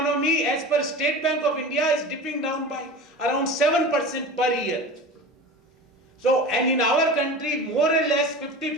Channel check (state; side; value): normal; both; correlation 0.33